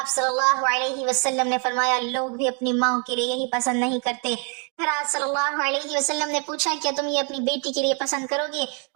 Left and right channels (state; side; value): quieter; left; 38.3 dB